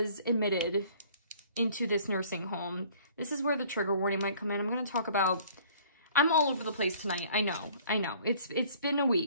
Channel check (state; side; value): inverted; both; correlation -0.54